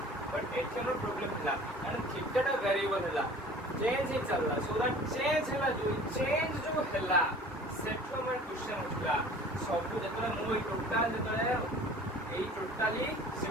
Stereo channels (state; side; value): normal; both; correlation 0.46